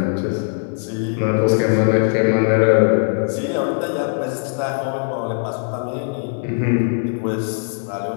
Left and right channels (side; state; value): right; silent; 66 dB below the other